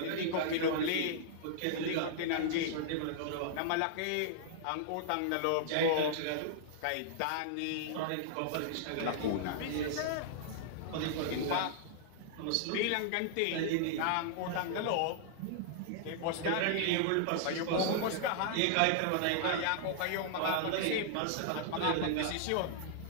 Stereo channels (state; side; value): different; both; correlation -0.01